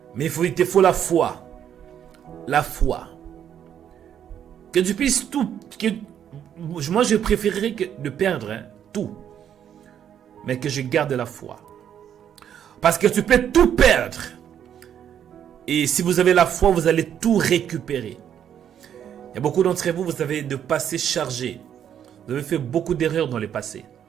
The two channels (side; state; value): left; quieter; 9.4 dB